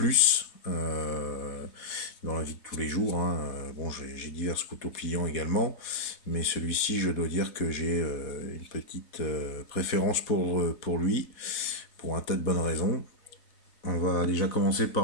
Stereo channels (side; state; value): right; late; 4.0 ms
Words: dans la vie de tous les jours. Bon, j'ai divers couteaux pliants également, mais celui-ci, je dois dire que j'ai une petite préférence pour lui, pour un tas de bonnes raisons. On va déjà commencer